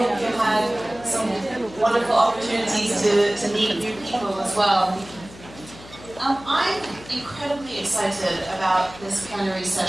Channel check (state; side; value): noise; left; hum, 19 dB below the sound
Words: you had some wonderful opportunities to meet new people as well. I'm incredibly excited about this plenary